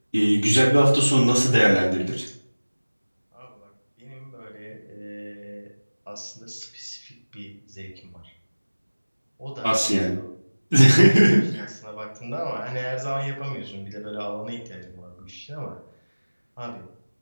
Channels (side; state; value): both; inverted; correlation -1.00